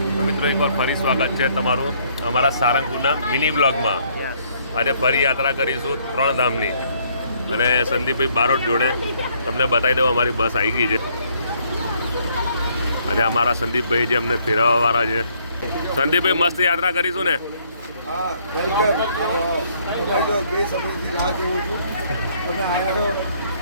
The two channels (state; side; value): inverted; both; correlation -0.66